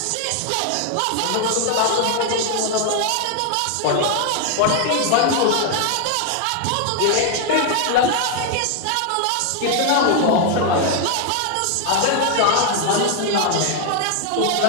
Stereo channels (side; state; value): both; different; correlation 0.00